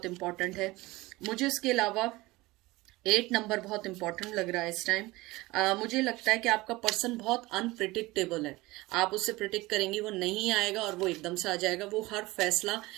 इंपॉर्टेंट है। मुझे इसके अलावा 8 नंबर बहुत इंपॉर्टेंट लग रहा है इस टाइम। मुझे लगता है कि आपका पर्सन बहुत अनप्रिडिक्टेबल है। आप उससे प्रिडिक्ट करेंगे वो नहीं आएगा और वो एकदम से आ जाएगा। वो हर फैसला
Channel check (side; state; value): left; quieter; 20.5 dB